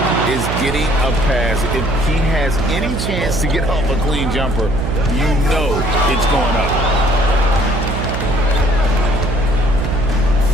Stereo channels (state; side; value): noise; right; hum, 3 dB below the sound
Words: is getting a pass, if he has any chance to get off a clean jumper, you know it's going up.